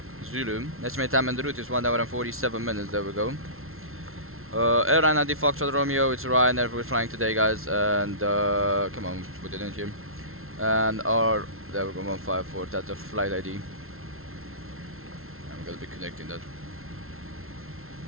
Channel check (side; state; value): left; late; 0.62 ms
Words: Zulu. Estimated time on the route is 1 hour and 47 minutes. There we go. Airline ID Foxtrot Romeo, it's Ryanair, we're flying today, guys, and come on, put it in here. And there we go, 154, that's the flight ID. I'm gonna be connecting that.